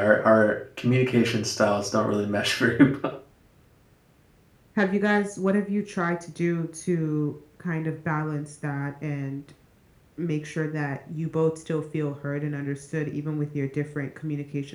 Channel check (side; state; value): both; identical; correlation 1.00